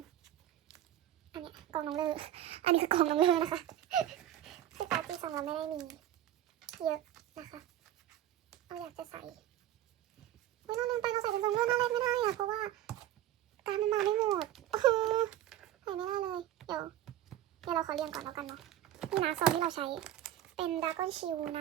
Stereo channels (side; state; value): left; quieter; 12.3 dB